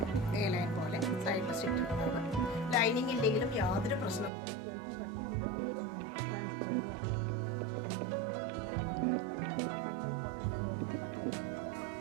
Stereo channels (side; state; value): left; drops out; at 4.3 s